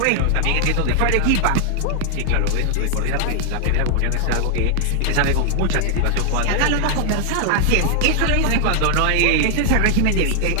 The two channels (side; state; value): both; different; correlation 0.00